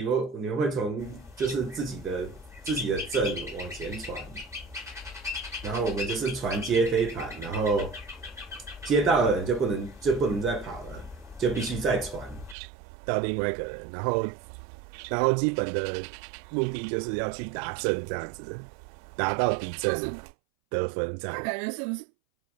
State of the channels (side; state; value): left; drops out; at 12.6 s